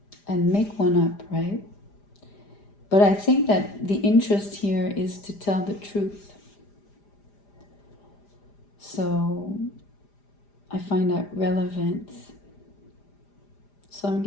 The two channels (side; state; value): right; late; 4.9 ms